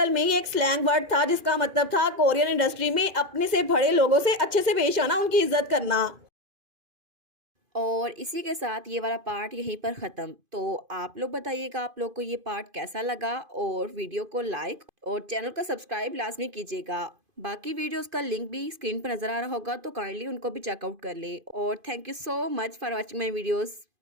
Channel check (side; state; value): left; late; 2.5 ms